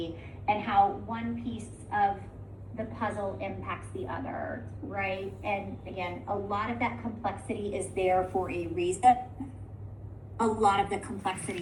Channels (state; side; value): identical; both; correlation 1.00